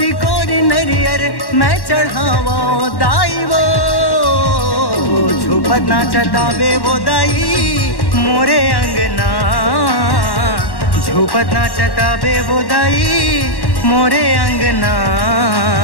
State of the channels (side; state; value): right; late; 1.1 ms